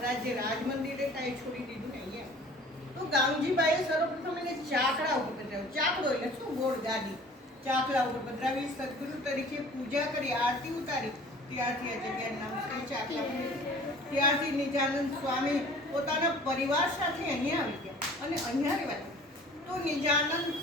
રાજ મંદિરે કાંઈ છોડી દીધું ને અહીંયા તો ગામજીબાઈએ સર્વપ્રથમ એને ચાકડા ઉપર પધરાવ્યો। ચાકડો એટલે શું? ગોળ ગાદી, ચાકડા ઉપર પધરાવી સદગુરુ તરીકે પૂજા કરી, આરતી ઉતારી। ત્યારથી આ જગ્યાનું નામ છે ચાકડા। ત્યારથી નિજાનંદ સ્વામી પોતાના પરિવાર સાથે અહીંયા આવી ગયા અને અહીંયા રહેવા તો નિજાનંદ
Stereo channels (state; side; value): normal; both; correlation 0.47